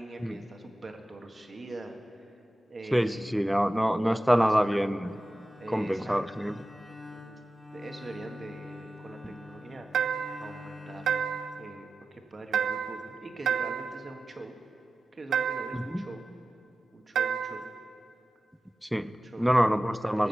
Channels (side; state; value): both; normal; correlation 0.94